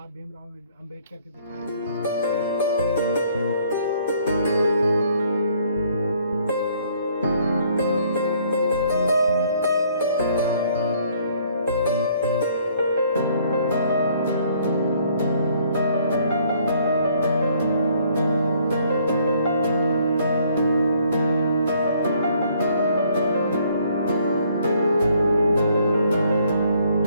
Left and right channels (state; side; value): inverted; both; correlation -0.64